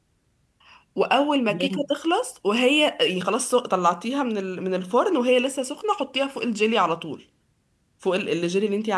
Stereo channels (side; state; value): both; identical; correlation 1.00